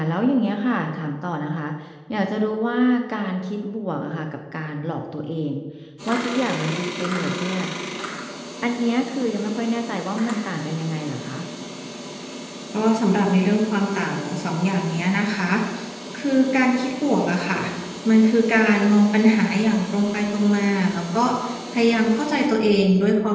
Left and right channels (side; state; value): both; identical; correlation 1.00